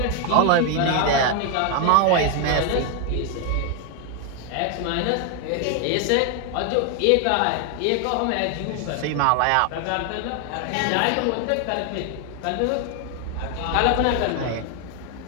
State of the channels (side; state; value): both; different; correlation 0.01